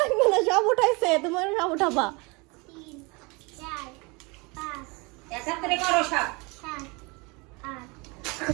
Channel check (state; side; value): quieter; left; 27.4 dB